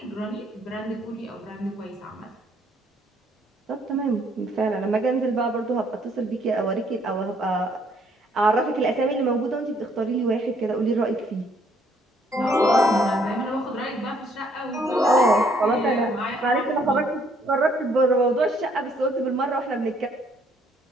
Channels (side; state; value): both; normal; correlation 0.66